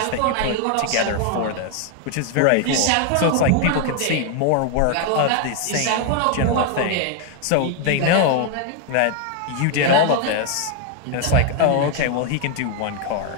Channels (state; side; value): different; both; correlation 0.01